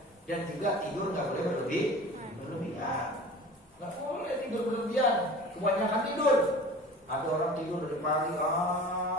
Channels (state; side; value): normal; both; correlation 0.40